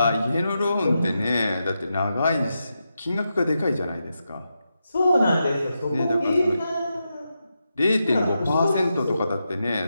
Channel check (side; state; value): both; inverted; correlation -0.87